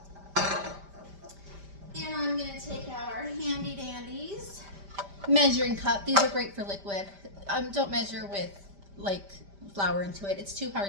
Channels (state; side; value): late; left; 5.1 ms